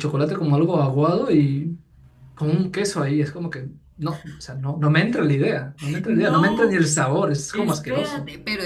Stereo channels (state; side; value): identical; both; correlation 1.00